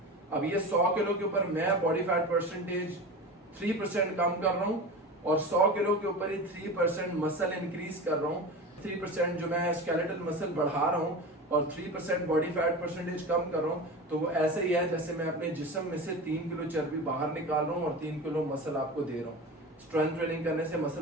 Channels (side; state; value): both; normal; correlation 0.29